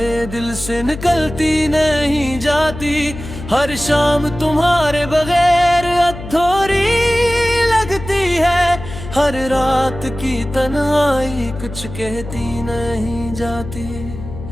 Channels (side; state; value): left; noise; hum, 11 dB below the sound